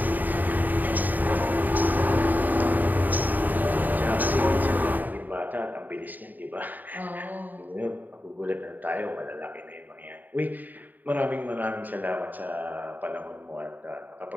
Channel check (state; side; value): late; left; 0.085 ms